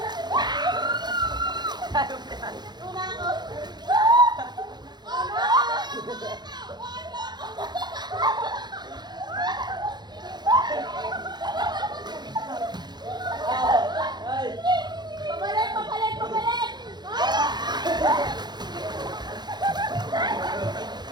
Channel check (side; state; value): left; late; 0.21 ms